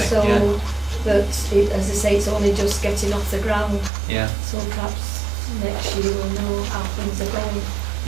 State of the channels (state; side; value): drops out; left; at 3.9 s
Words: So Yeah. that, as I say, it's only just getting off the ground. Yeah. So perhaps next year we'll know how things are going.